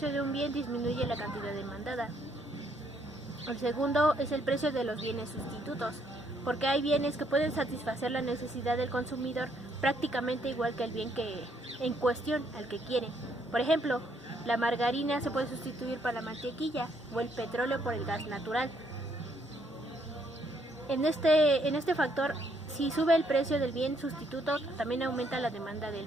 de un bien disminuye la cantidad demandada. El segundo es el precio de los bienes sustitutos, porque hay bienes que pueden satisfacer la necesidad del consumidor prácticamente igual que el bien que en cuestión al que quiere. Por ejemplo, la margarina se puede sustituir por la mantequilla o el petróleo por el gas natural. En este factor, si sube el precio del bien sustituto, también aumenta la demanda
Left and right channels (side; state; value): both; normal; correlation 0.70